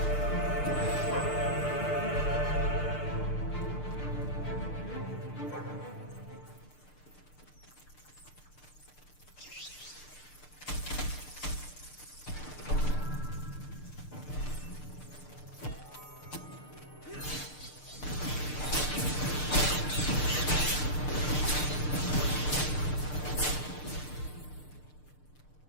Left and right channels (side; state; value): right; late; 6.7 ms